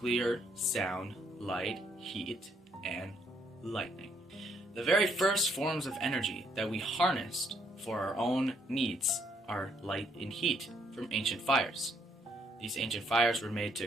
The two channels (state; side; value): normal; both; correlation 0.71